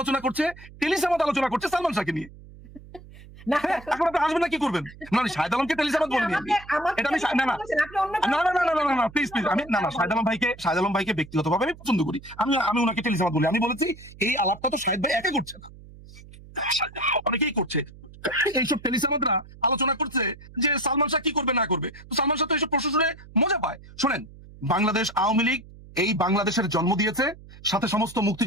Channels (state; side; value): noise; right; hum, 19 dB below the sound